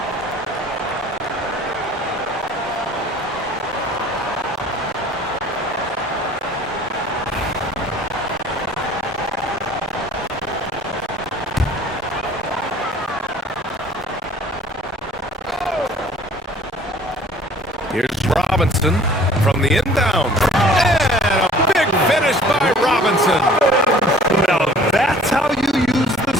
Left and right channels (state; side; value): normal; both; correlation 0.51